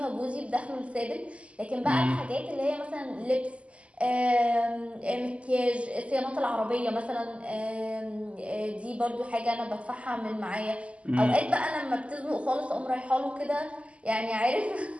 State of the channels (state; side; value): late; left; 0.060 ms